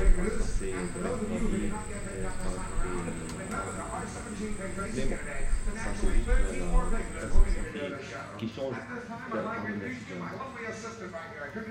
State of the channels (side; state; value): both; identical; correlation 1.00